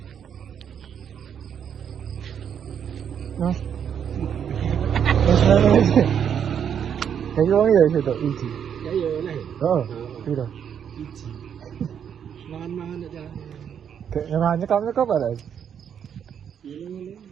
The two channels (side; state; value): left; quieter; 8.3 dB